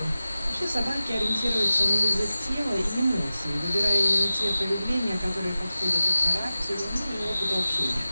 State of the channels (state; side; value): inverted; both; correlation -0.95